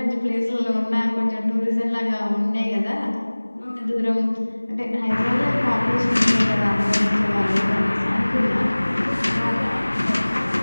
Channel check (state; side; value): inverted; both; correlation -1.00